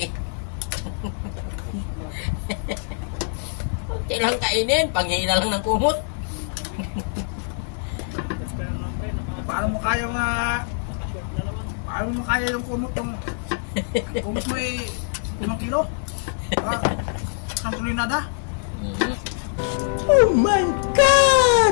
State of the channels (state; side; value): silent; right; digital silence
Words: Kunti lang kainin. Panghila lang ng kumot. Paano mo kaya paano mo kaya yung kumot yung kumot mo ay 5 kilo? Ang tulinada? Oh my